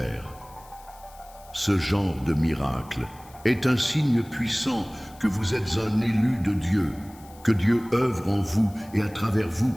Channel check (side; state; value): left; noise; hiss, 24 dB below the sound